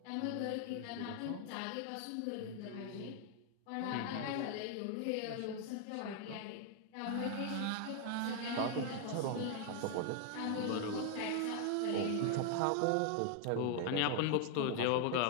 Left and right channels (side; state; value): both; different; correlation 0.00